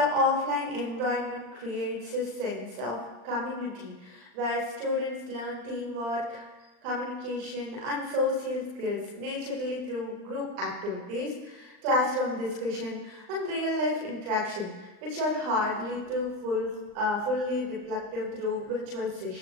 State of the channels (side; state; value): left; late; 39 ms